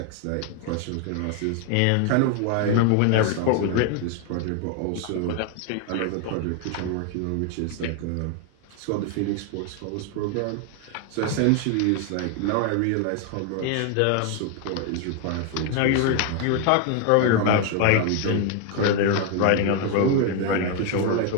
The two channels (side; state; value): both; different; correlation 0.01